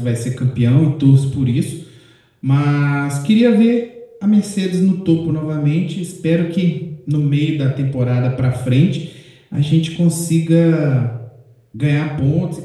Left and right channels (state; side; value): identical; both; correlation 1.00